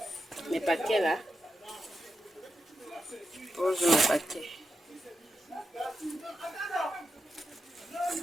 mes paquets là. Pose mes paquets.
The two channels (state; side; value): normal; both; correlation 0.87